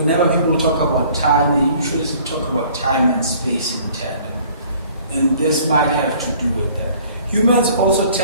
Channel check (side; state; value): both; inverted; correlation -0.54